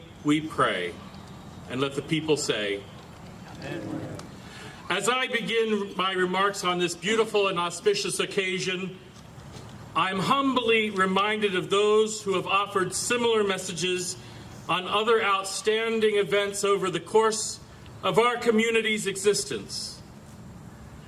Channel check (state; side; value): identical; both; correlation 1.00